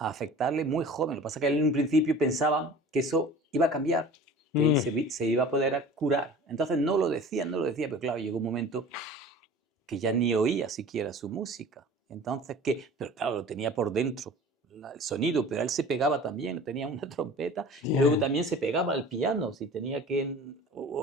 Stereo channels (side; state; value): both; normal; correlation 0.42